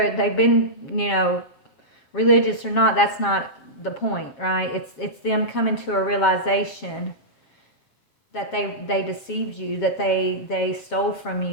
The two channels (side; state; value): right; late; 7.4 ms